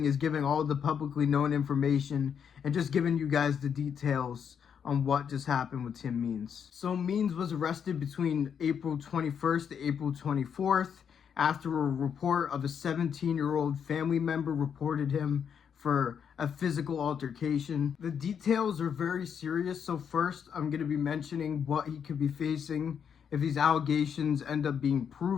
is giving all the publicly known information and just giving you guys the details on what just happened with Tim Means. So Means was arrested between April 21st to April 24th after a report of a 17-year-old family member reported him for a physical altercation. The details are very serious, so first I'm going to be mentioning what he could be facing if these allegations end up being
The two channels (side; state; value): right; quieter; 7.6 dB